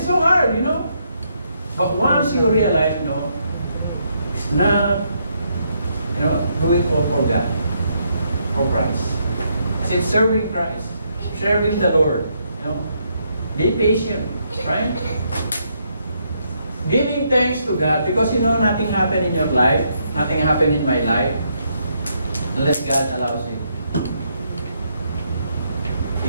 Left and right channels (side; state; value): both; inverted; correlation -0.76